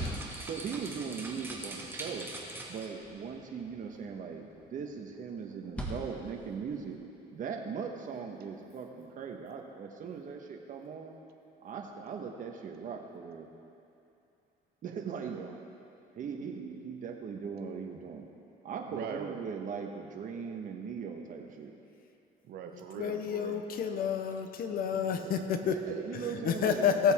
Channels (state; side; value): normal; both; correlation 0.29